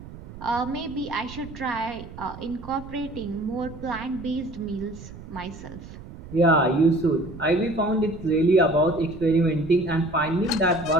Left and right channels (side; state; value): right; noise; rumble, 15 dB below the sound